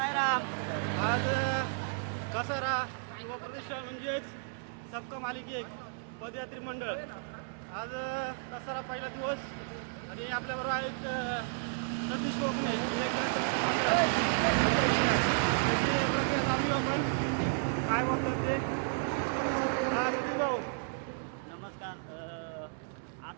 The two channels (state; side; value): silent; left; digital silence